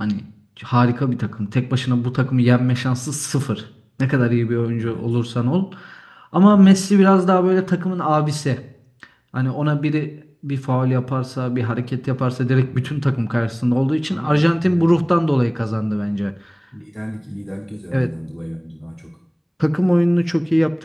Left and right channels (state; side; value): identical; both; correlation 1.00